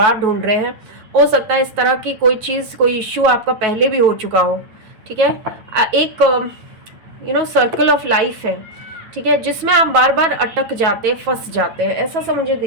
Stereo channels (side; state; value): left; late; 9.2 ms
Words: ढूंढ रहे हैं। हो सकता है इस तरह की कोई चीज़, कोई इश्यू आपका पहले भी हो चुका हो, ठीक है। एक सर्कल ऑफ लाइफ है, ठीक है, जिसमें आप बार बार अटक जाते हैं, फंस जाते हैं, ऐसा सा मुझे